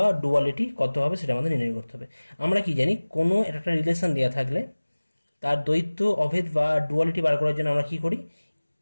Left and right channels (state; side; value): inverted; both; correlation -1.00